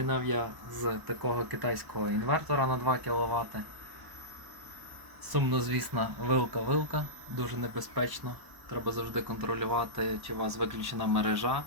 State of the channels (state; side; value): late; left; 1.0 ms